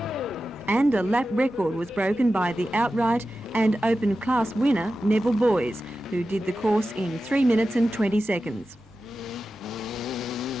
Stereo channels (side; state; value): both; normal; correlation 0.92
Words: and a lap record was broken by the outright and open class winner Neville Boys, who did the course in 3 minutes and 20 seconds.